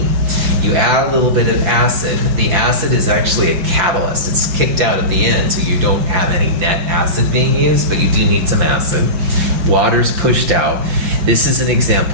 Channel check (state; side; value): late; left; 5.9 ms